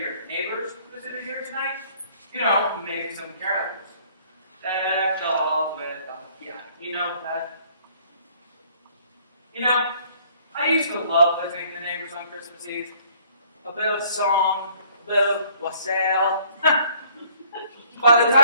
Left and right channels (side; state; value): both; inverted; correlation -0.60